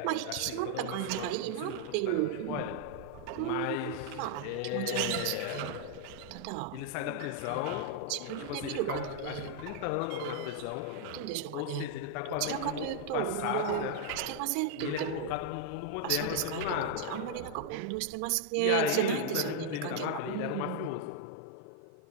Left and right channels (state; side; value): different; both; correlation 0.00